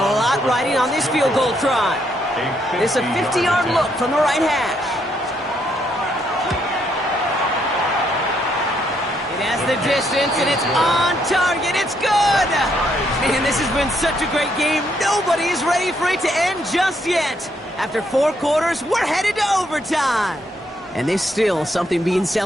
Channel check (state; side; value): normal; both; correlation 0.74